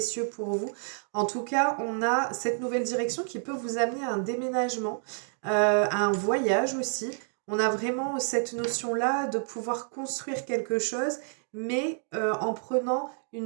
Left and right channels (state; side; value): silent; left; 56 dB below the other